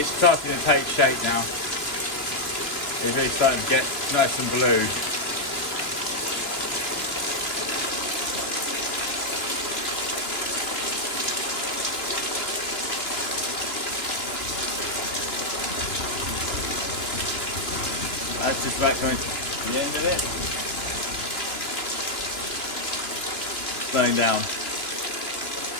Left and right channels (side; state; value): right; late; 2.9 ms